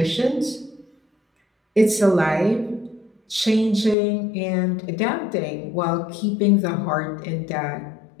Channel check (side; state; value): right; drops out; at 4.0 s